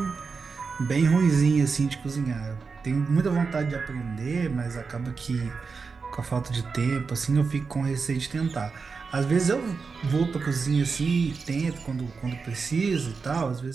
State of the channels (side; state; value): left; quieter; 4.9 dB